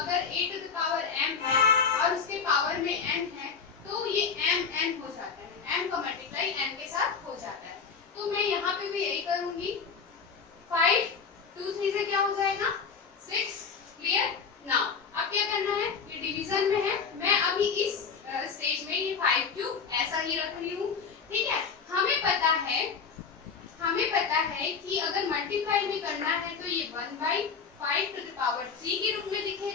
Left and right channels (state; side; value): quieter; right; 5.8 dB